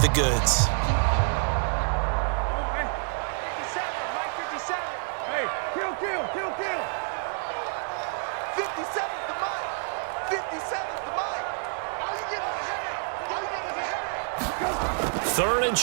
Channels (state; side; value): silent; left; 59 dB below the other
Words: the goods. Third and